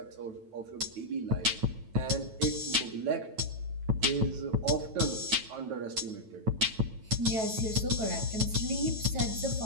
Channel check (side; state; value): left; late; 9.1 ms